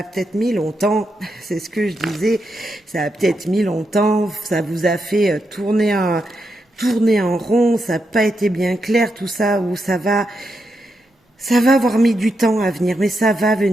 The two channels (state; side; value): normal; both; correlation 0.84